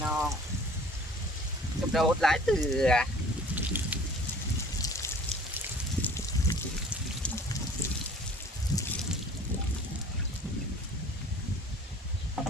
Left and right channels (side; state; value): both; normal; correlation 0.49